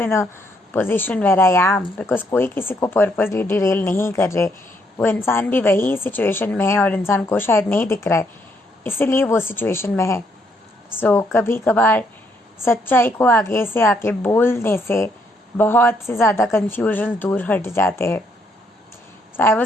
in a position where I am, because कोई किसी को पर्पजली डिरेल नहीं कर रहे. वो इंसान भी वही सिचुएशन में है और इंसान को शायद नहीं दिख रहा है, इसीलिए वो सिचुएशन में है. सो कभी कभार सच्चाई को आगे से आके बोलने से बहुत से ज़्यादा कन्फ्यूजन दूर हट जाते हैं. So I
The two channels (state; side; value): normal; both; correlation 0.72